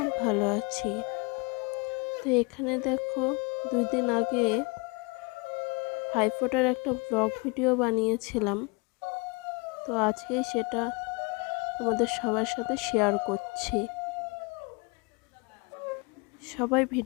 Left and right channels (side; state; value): right; quieter; 29.6 dB